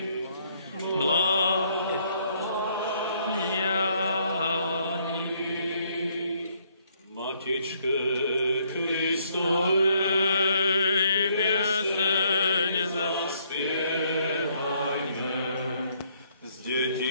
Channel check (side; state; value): both; inverted; correlation -0.68